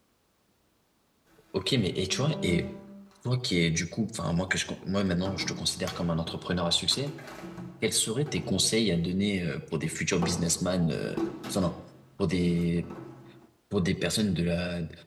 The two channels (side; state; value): both; identical; correlation 1.00